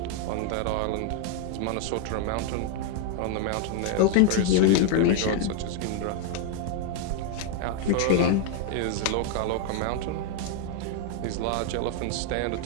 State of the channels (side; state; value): both; different; correlation 0.00